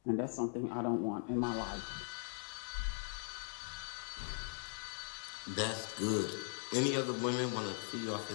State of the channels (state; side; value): silent; right; digital silence